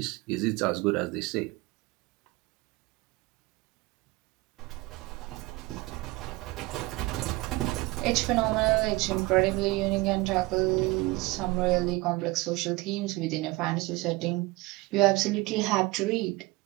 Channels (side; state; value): left; quieter; 21.7 dB